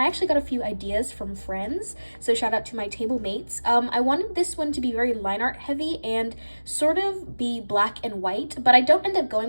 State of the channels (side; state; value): both; inverted; correlation -1.00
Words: actually got a few ideas from friends, so shout out to my table mates. I wanted this one to be very line art heavy and sort of be black and white, but I don't end up going